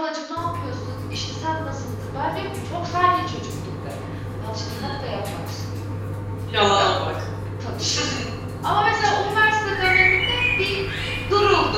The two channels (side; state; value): both; identical; correlation 1.00